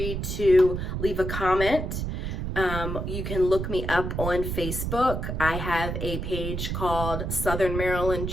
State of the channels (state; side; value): noise; right; rumble, 3 dB below the sound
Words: to leave a comment. You can look me up on Facebook. I have a page called Southern Maryland